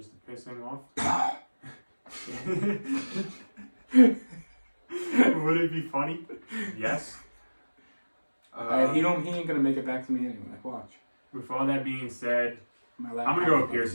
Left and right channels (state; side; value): inverted; both; correlation -1.00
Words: to piss him off. Would it be funny? Yes. He ain't gonna make it back to me anyway. Watch. With all that being said, I'm gonna go with Pierce